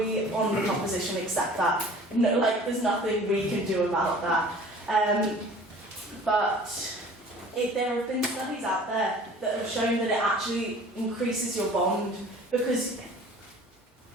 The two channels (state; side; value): normal; both; correlation 0.47